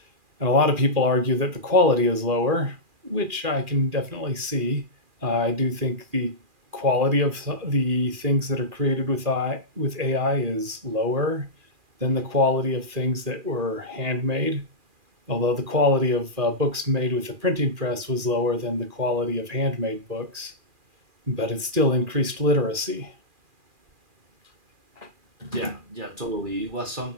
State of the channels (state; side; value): late; left; 2.4 ms